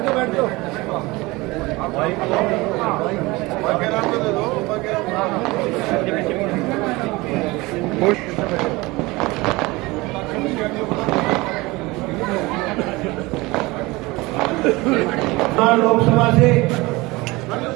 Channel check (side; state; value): left; quieter; 22.2 dB